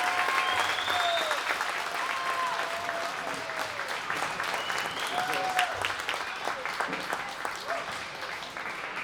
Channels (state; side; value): identical; both; correlation 1.00